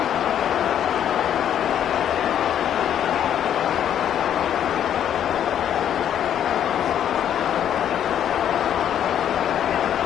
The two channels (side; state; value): right; quieter; 9.9 dB